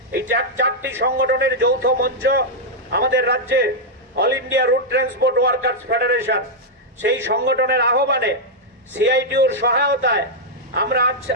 এই চারটি সংগঠনের যৌথ মঞ্চ আমাদের রাজ্যে all India route transport workers federation, সেই সংগঠনের আহ্বানে সিআইটিউর সহায়তায় আমরা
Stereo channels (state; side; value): normal; both; correlation -0.04